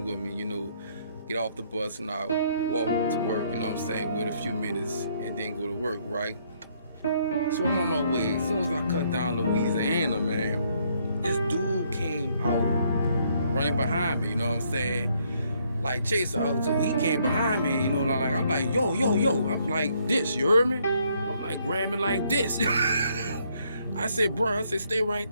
with me, get off the bus and I walk to work, you know what I'm saying? Wait a few minutes and then go to work, right? So I'm on my way. As soon as I cut down Louisiana, man, this dude came out running behind me, you know what I'm saying? Like chase out. So he came behind me, I'm like, yo, yo, yo. I'm like this, you heard me? I'm like grabbing like this. I said, bro, I said, stay right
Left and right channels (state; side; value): inverted; both; correlation -0.69